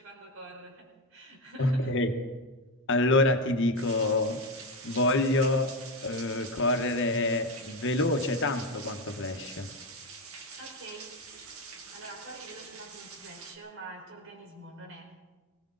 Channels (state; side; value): normal; both; correlation 0.15